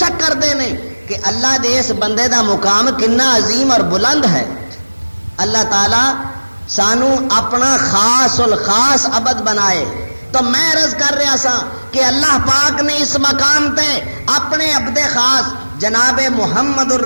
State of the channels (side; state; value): both; inverted; correlation -1.00